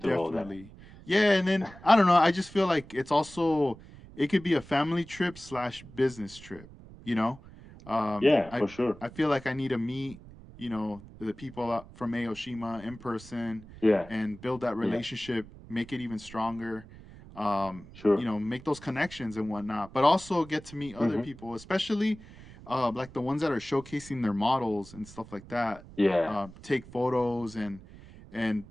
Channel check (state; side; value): noise; right; rumble, 19 dB below the sound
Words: go there. definitely, yeah. And then I don't know. I just feel like it's also it could be a family trip slash business trip. You know, Yeah, I for sure. I feel like I need to meet the people from Aoshima in person Yeah. and build that Yeah. relationship, make it even stronger. Sure. Make those connections and whatnot, but also get to meet other Hmm. people, especially like the ones that are showcasing their models and stuff like that. Yeah. Take photos and